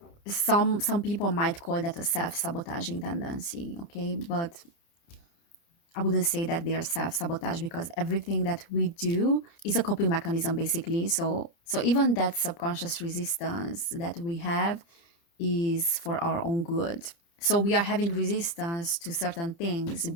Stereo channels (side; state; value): right; late; 29 ms